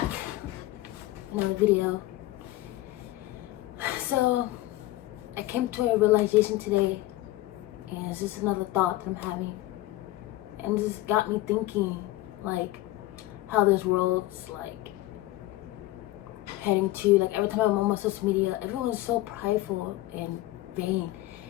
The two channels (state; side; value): quieter; right; 17.0 dB